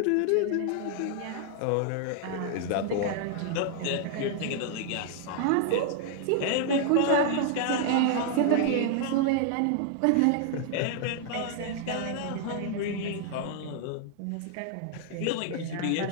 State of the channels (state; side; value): different; both; correlation 0.00